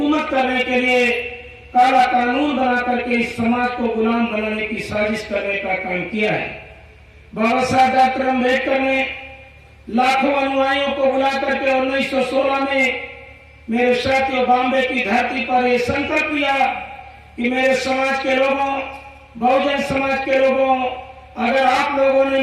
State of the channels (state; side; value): identical; both; correlation 1.00